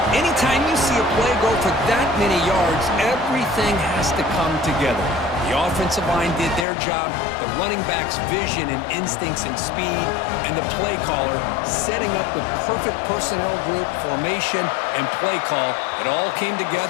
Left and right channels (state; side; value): drops out; right; at 6.7 s